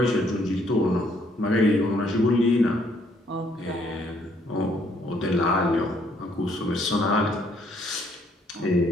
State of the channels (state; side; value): normal; both; correlation 0.67